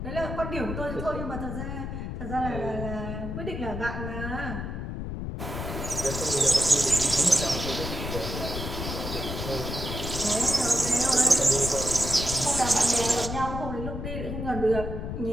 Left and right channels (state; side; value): noise; left; rumble, 5 dB below the sound